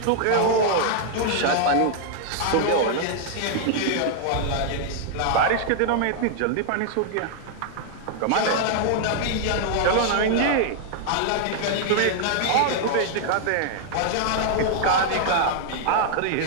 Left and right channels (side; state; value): both; different; correlation -0.01